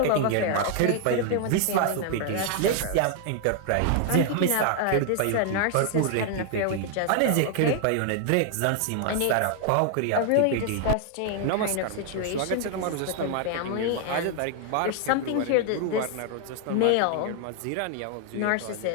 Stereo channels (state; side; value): different; both; correlation 0.00